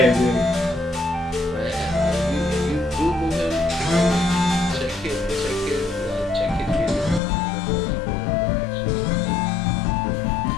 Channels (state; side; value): drops out; right; at 7.2 s